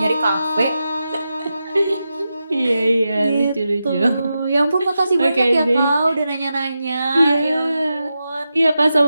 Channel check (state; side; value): inverted; both; correlation -0.89